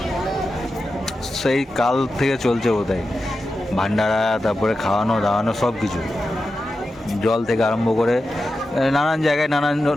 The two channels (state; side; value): normal; both; correlation 0.91